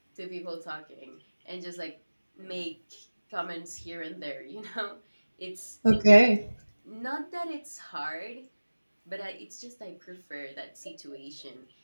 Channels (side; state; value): both; inverted; correlation -1.00